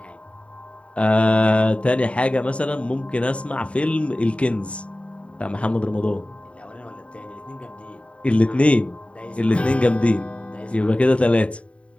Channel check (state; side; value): late; right; 0.062 ms